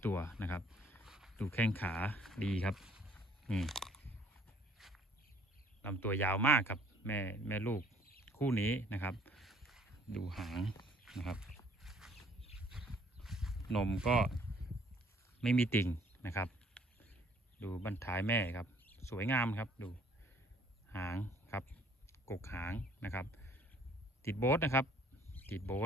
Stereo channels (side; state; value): both; normal; correlation 0.60